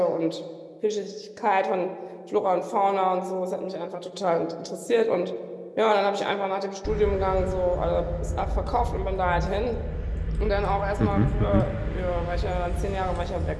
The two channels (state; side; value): identical; both; correlation 1.00